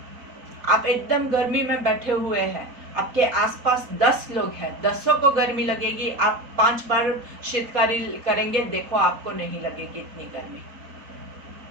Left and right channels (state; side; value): late; left; 4.2 ms